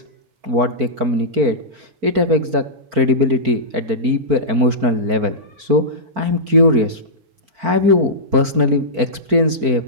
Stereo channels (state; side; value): late; left; 4.5 ms